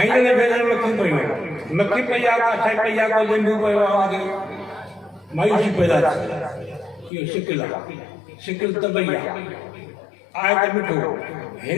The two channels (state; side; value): drops out; right; at 7.1 s